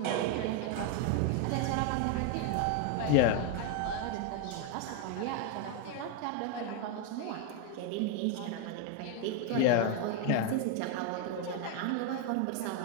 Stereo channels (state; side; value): different; both; correlation 0.01